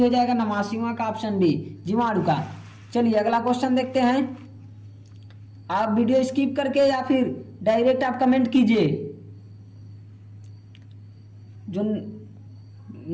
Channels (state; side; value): identical; both; correlation 1.00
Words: जाएगा, 89वां का ऑप्शन बी जीवाणु का। चलिए अगला क्वेश्चन देखते हैं। आप वीडियो स्किप करके या फिर डायरेक्ट आप कमेंट कीजिए। जो